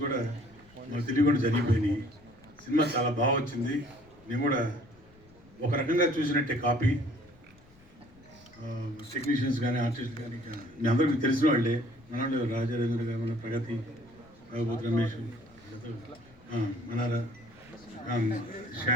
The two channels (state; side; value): noise; left; rumble, 26 dB below the sound